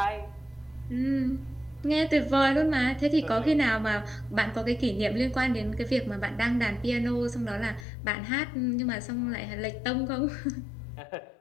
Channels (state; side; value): drops out; right; at 7.9 s